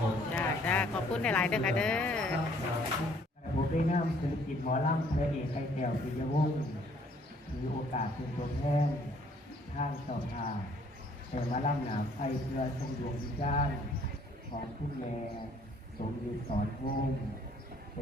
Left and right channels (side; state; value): both; normal; correlation 0.61